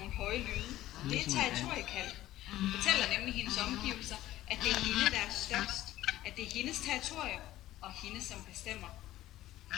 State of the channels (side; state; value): right; quieter; 14.8 dB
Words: høje lyde. Det er territoriekald. Hun fortæller nemlig hendes omgivelser, at det er hende, der er størst. At det er hendes territorium, og hende, som bestemmer.